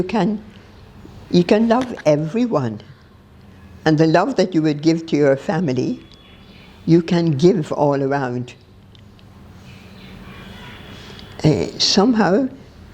can love everyone, and the love that you would give to your family, you can give all around. Somehow,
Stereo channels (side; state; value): both; identical; correlation 1.00